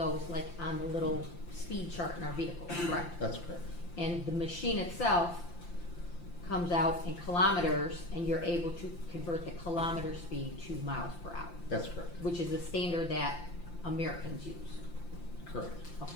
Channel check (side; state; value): right; late; 5.8 ms